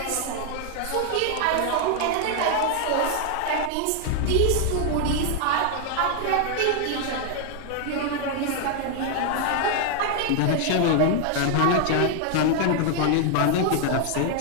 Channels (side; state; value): both; different; correlation 0.00